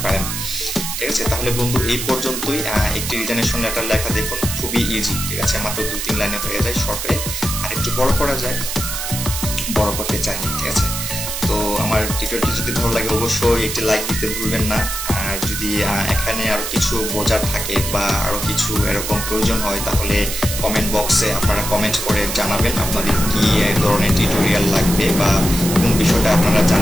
পারেন, ঠিক আছে? তাহলে বন্ধু এই পর্যন্তই। একটি রিজাইনেশন লেটার লেখা দেখুন খুবই ইজি, ঠিক আছে? মাত্র 2-3 লাইনে হয়ে যায় শর্ট হয়ে। আর একটু বড় করা যায়, বড় করতে চাইনি, ঠিক আছে? তো আমার টিউটোরিয়ালটি যদি ভালো লাগে অবশ্যই একটি লাইক দিতে ভুলবেন না। আর যদি এখানে আরো কিছু বোঝার থাকে বা আরো কিছু এরকম প্রয়োজন হয় তাহলে কমেন্ট বক্সে আপনারা কমেন্ট করে জানাবেন আপনাদের কি ধরনের টিউটোরিয়াল লাগবে বা কোন বিষয়টা আপনারা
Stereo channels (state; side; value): noise; right; hiss, 4 dB below the sound